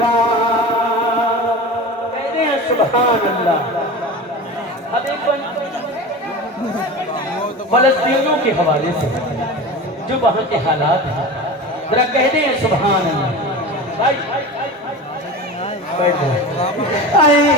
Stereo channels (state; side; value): normal; both; correlation 0.31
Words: کہتے ہیں سبحان اللہ اب ایک فلسطینیوں کے حوالے سے جو وہاں کے حالات ہیں ذرا کہتے ہیں سبحان اللہ اے